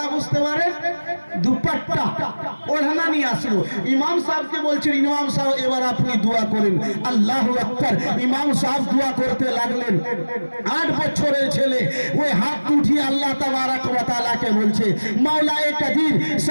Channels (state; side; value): inverted; both; correlation -1.00